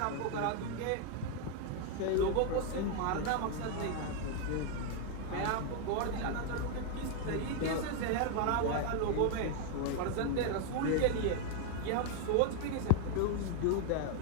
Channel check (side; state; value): both; different; correlation 0.01